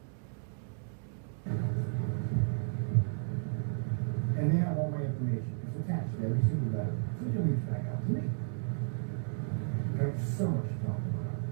And they have all my information. It's attached to every single letter. So you'll reach back out to me. There's so much to talk about.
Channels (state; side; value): silent; left; digital silence